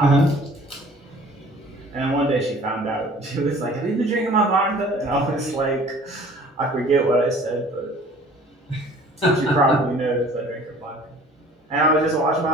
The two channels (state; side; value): normal; both; correlation 0.50